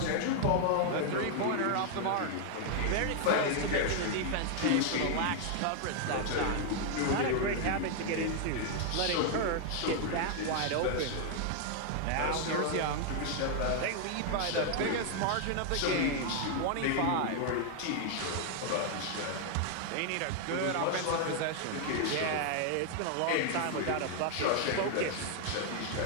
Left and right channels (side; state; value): both; different; correlation 0.00